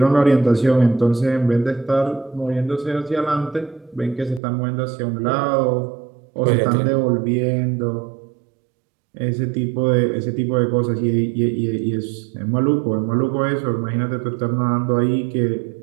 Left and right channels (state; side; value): drops out; left; at 4.4 s